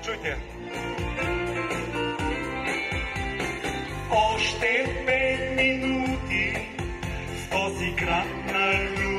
Чуйте я. Още 5 минути в този град на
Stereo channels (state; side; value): identical; both; correlation 1.00